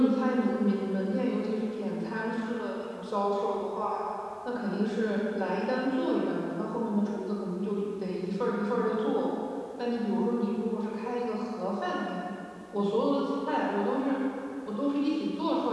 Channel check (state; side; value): identical; both; correlation 1.00